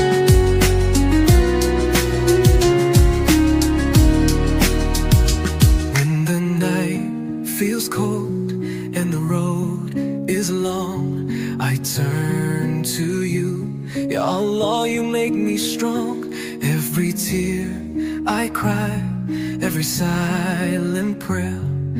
When the night feels cold and the road is long, I turn to you. Ya Allah, you make me strong. Every tear I cry, every silent prayer,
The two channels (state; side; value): identical; both; correlation 1.00